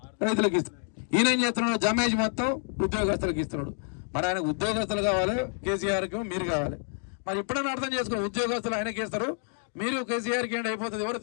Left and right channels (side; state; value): right; silent; 56 dB below the other